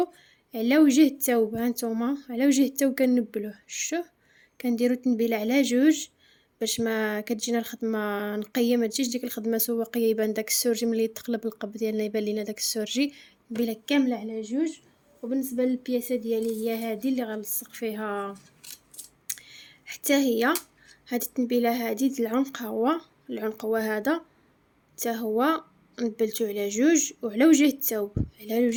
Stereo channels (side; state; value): both; identical; correlation 1.00